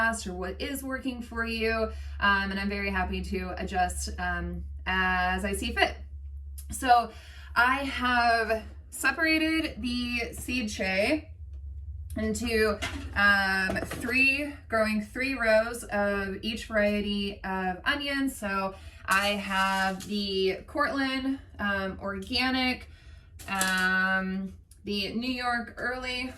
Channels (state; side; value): identical; both; correlation 1.00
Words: or what is working for you. And I'm very happy to adjust as I see fit. So I have separated the seed tray into growing three rows of each variety of onions. So I have the Cortland organic, the New York early